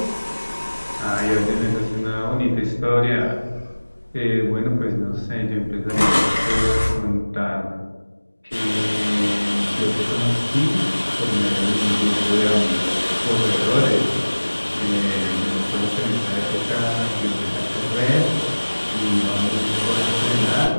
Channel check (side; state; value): both; inverted; correlation -1.00